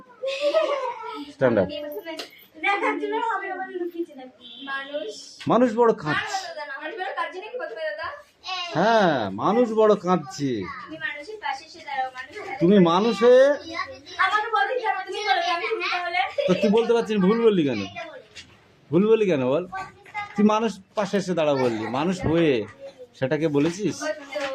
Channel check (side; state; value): both; identical; correlation 1.00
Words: স্ট্যান্ডার্ড। মানুষ বড় কাঁদছে। হ্যাঁ, মানুষ বড় কাঁদছে। তুমি মানুষ হয়ে তো তুই বলতে পারছিস, ভুল বললি কেন? ভুল বললি কেন বল? তুই মানুষ পাশে এসে দাঁড়া বললি, মানুষ হয়ে সেটাকে বলেছিস?